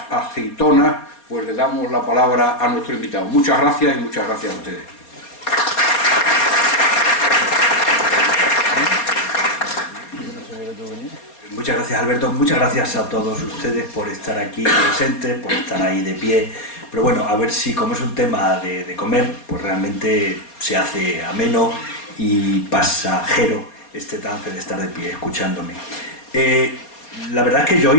aceitonas, pues le damos la palabra a nuestro invitado. Muchas gracias y muchas gracias a ustedes. Muchas gracias, Alberto. Muchas gracias a todos ustedes por estar aquí presentes, por estar ahí de pie. Pero bueno, a ver si, como es un tema de comer, pues realmente se hace ameno y pasajero este trance de estar de pie escuchándome. La verdad es que yo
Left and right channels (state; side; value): late; right; 4.3 ms